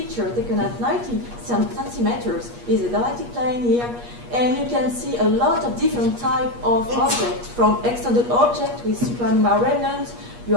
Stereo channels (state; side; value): late; left; 8.4 ms